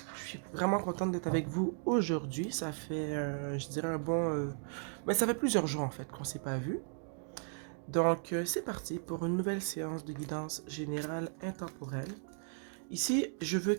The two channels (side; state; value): left; silent; 54 dB below the other